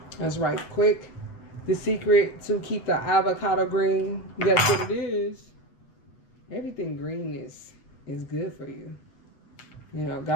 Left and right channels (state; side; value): late; right; 8.2 ms